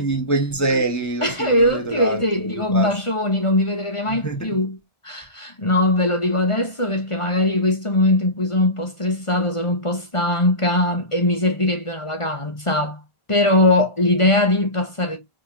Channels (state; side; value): late; right; 1.5 ms